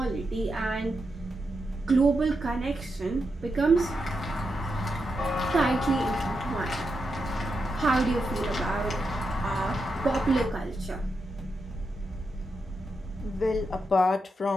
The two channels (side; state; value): both; normal; correlation 0.85